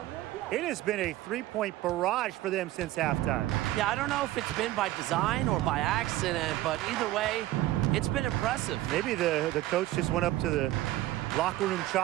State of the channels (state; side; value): quieter; left; 15.8 dB